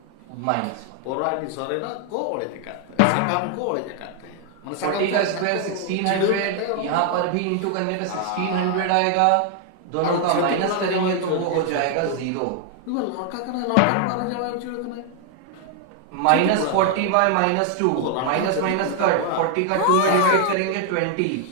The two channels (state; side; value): different; both; correlation 0.00